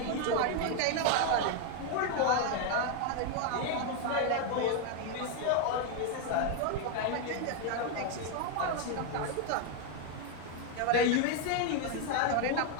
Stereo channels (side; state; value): both; different; correlation 0.01